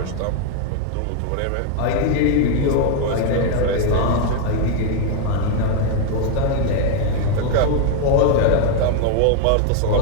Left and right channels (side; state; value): both; different; correlation 0.01